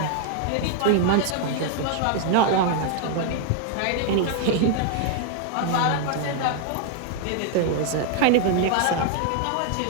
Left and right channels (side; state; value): both; different; correlation 0.00